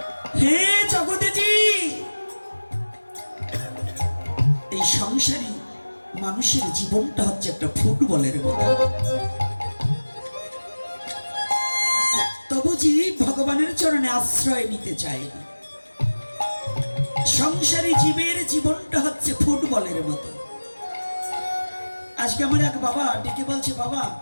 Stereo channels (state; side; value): inverted; both; correlation -1.00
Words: হে জগতেজি, এই সংসারী মানুষের জীবনটা হচ্ছে একটা ফুটবলের মতো। তবু জীব ভগবানের চরণে আশ্রয় নিতে চায় না। সংসারী জীবের জীবনটা হচ্ছে ফুটবলের মতো। আজকে আমার এক বাবা ডেকে বলছে, বাবা